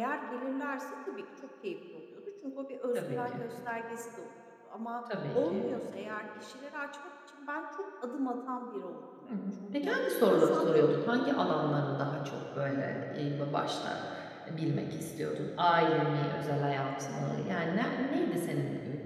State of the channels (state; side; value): identical; both; correlation 1.00